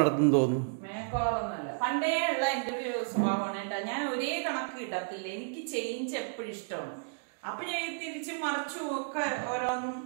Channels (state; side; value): silent; left; digital silence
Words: തോന്നുന്നു. മേക്ക് ഓവർ ഒന്നല്ല, പണ്ടേ ഉള്ള എന്റെ ഒരു സ്വഭാവമാണ് കേട്ടോ. ഞാൻ ഒരേ കണക്ക് കിട്ടത്തില്ല. എനിക്ക് ചേഞ്ച് എപ്പോഴും ഇഷ്ടമാണ്. അപ്പൊ ഞാൻ തിരിച്ചും മറിച്ചും ഒക്കെ ഓരോന്നും